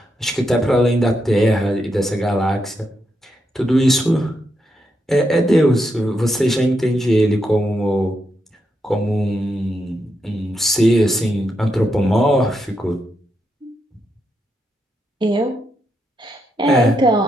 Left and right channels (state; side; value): normal; both; correlation 0.82